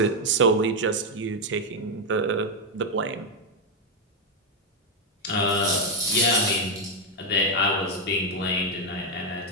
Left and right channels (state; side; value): normal; both; correlation 0.04